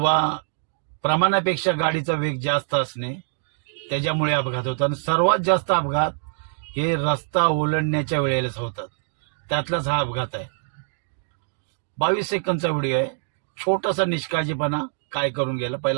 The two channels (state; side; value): silent; left; digital silence